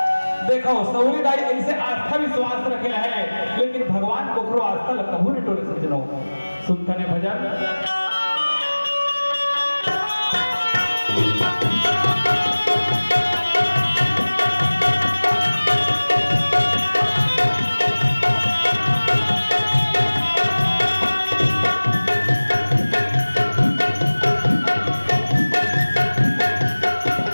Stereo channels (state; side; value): inverted; both; correlation -1.00